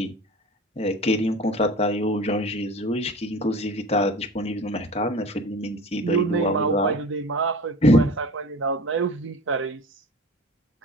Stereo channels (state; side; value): normal; both; correlation 0.37